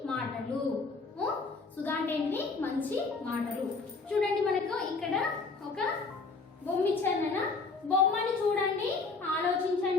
మాటలు. సుధ అంటే ఏంటిది? మంచి మాటలు. చూడండి, మనకు ఇక్కడ ఒక బొమ్మ ఇచ్చారు. బొమ్మని చూడండి,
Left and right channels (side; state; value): right; quieter; 4.1 dB